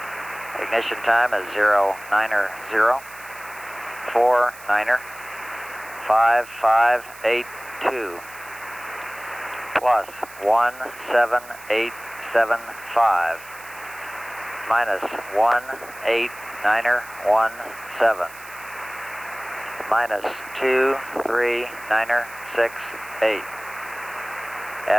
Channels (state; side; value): noise; right; hiss, 19 dB below the sound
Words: Ignition time is 090 49er 5582 plus 17875 minus 189er17 minus 239er68.